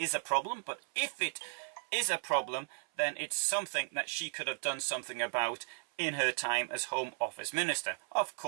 a problem, but if it is a problem, then it's something that she could have done something about in her time as Home Office Minister. Of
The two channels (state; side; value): silent; left; 54 dB below the other